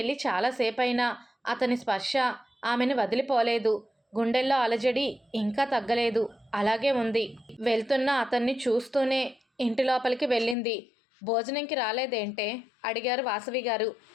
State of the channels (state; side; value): drops out; right; at 10.6 s